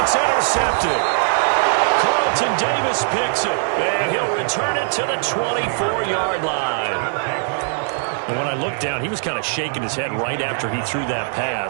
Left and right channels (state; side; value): silent; left; digital silence